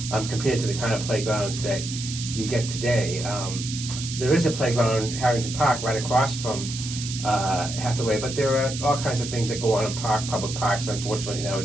compared to the kind of playgrounds that you get today. There is a playground, Harrington Park, right across from Hathaway, but there are all kinds of things that go on in public parks, unfortunately,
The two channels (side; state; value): right; noise; hiss, 8 dB below the sound